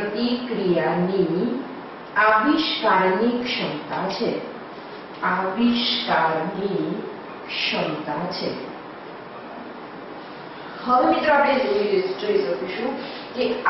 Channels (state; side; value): identical; both; correlation 1.00